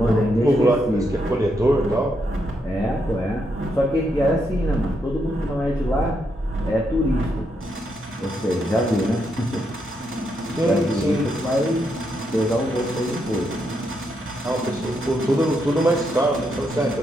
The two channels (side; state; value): both; normal; correlation 0.79